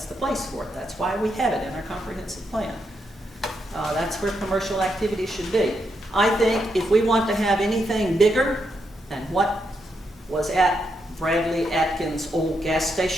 the place for it. That's why we have it in our comprehensive plan. That's where commercial activity should be. I think if we want to have anything bigger than what was at Bradley Atkins' old gas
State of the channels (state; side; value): normal; both; correlation 0.81